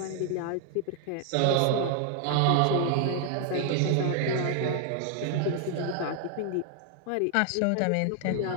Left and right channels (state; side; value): different; both; correlation 0.00